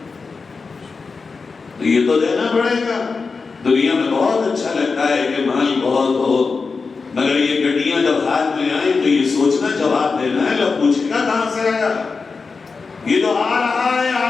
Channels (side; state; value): right; quieter; 4.6 dB